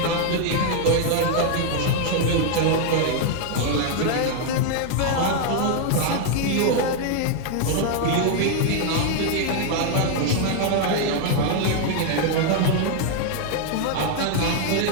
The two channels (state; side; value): different; both; correlation 0.00